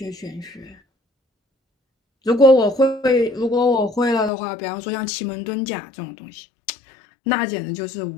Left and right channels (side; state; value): right; drops out; at 4.3 s